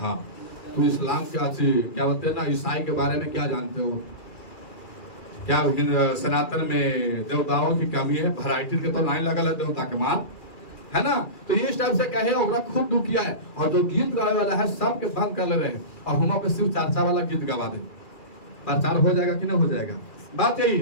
तू इस्लाम क्या बोलते हैं ना, ईसाई के बारे में क्या जानते हो, क्या सनातन में देवताओं की कमी है, वैरायटी के तो लाइन लगल है देवता के मान, है ना। तो ये टाइप से कहे और खूब दुख किया है। और जो गीत गावे वाला है सबके बंद कर ले रहे हैं, और हम पे सिर्फ चर्चा वाला गीत गवा दे, प्रचार हो जाएगा कि नहीं हो जाएगा? बात यही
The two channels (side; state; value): right; late; 2.4 ms